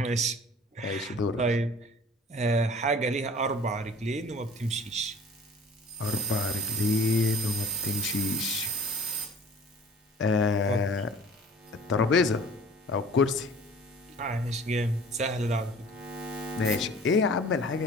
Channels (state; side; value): normal; both; correlation 0.48